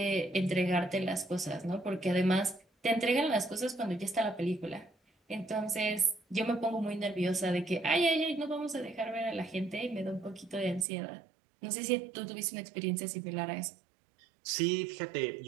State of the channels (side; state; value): left; drops out; at 10.9 s